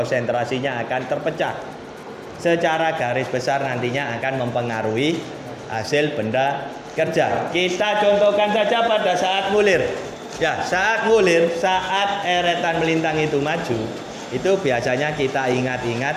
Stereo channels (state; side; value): identical; both; correlation 1.00